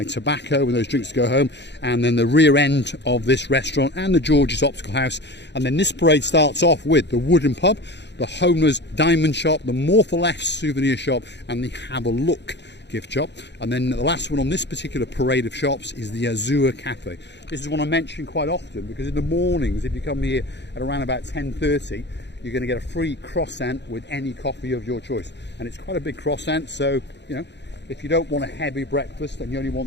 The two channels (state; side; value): late; right; 0.51 ms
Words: tobacco and those drinks to go home, and then the rear end of this restaurant and the George's Optical House. And then this parade starts off with the Wooden Pub, the Homer's Diamond Shop, the More for Less souvenir shop, and the Have a Look gift shop. And then the last one on this particular parade of shops is the Azure Cafe. This is one I mention quite often because in the mornings, if you come here at around about 10:30, you're going to get a free croissant with any coffee of your choice. And it's quite a big croissant, so, you know, if you don't want a heavy breakfast and you only